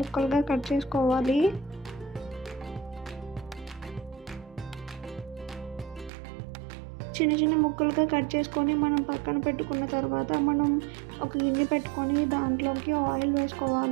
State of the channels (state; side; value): drops out; left; at 6.1 s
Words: కట్ చేసుకోవాలి. చిన్న చిన్న ముక్కలుగా కట్ చేసుకొని మనం పక్కన పెట్టుకున్న తర్వాత మనం ఒక గిన్నె పెట్టుకొని దాంట్లోకి ఆయిల్